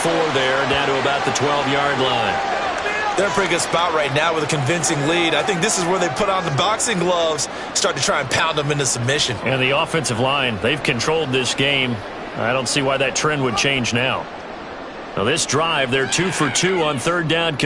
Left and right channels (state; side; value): identical; both; correlation 1.00